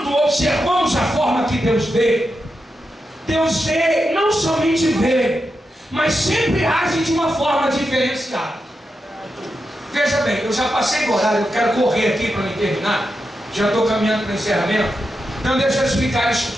observamos a forma que Deus vê, não somente vê, mas sempre age de uma forma diferenciada. Veja bem, eu já passei do horário, eu quero correr aqui para me terminar, já estou caminhando para o encerramento, então deixa eu explicar isso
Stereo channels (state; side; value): normal; both; correlation 0.88